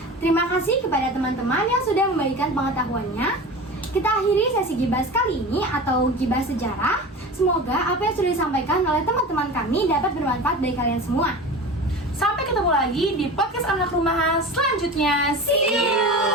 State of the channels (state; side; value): normal; both; correlation 0.33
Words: Terima kasih kepada teman-teman yang sudah membagikan pengetahuannya. Kita akhiri sesi Gibas kali ini atau Gibas Sejarah. Semoga apa yang sudah disampaikan oleh teman-teman kami dapat bermanfaat bagi kalian semua. Sampai ketemu lagi di podcast anak rumahan selanjutnya. See